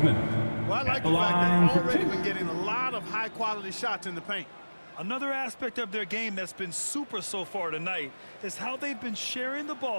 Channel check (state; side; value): inverted; both; correlation -1.00